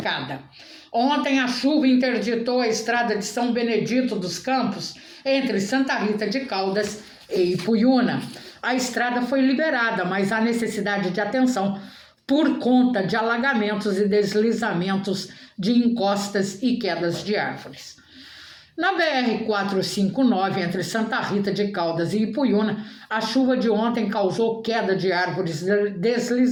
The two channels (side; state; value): both; identical; correlation 1.00